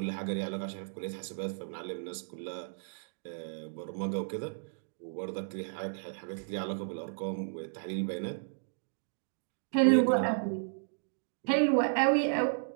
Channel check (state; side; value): silent; left; digital silence